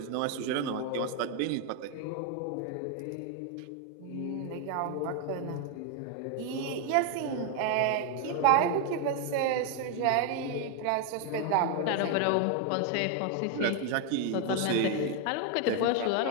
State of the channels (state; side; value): different; both; correlation 0.01